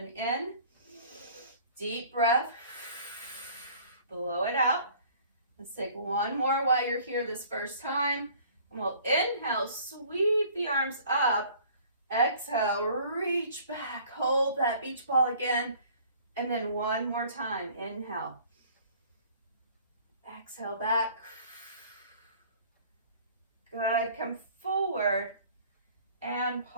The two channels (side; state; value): both; inverted; correlation -0.52